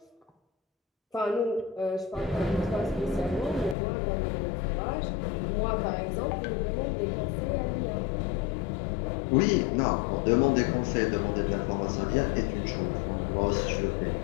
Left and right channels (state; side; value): drops out; right; at 3.8 s